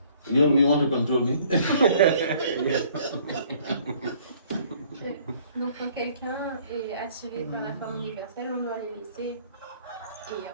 You want to control me? Donc quand quelqu'un est attiré par la forme universelle, on doit les laisser. Et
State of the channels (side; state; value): both; inverted; correlation -0.58